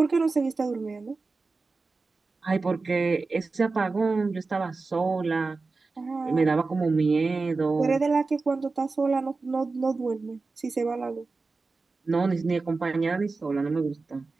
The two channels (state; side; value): quieter; left; 3.9 dB